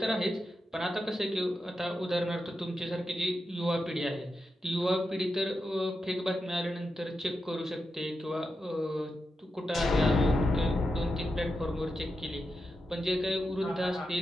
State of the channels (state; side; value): normal; both; correlation 0.88